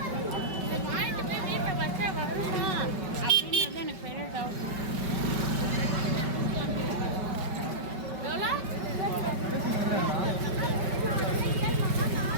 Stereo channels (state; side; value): late; left; 5.2 ms